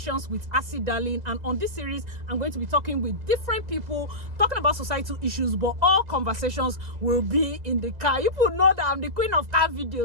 with Asi Darlyn. And on this series, I'm going to be talking with different people, talking about societal issues, but all conversations will be in the car. You people know that I'm the queen of car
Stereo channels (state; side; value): late; left; 2.0 ms